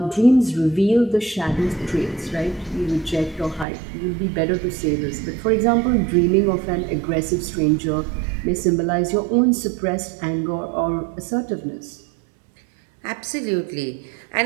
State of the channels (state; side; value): drops out; left; at 3.7 s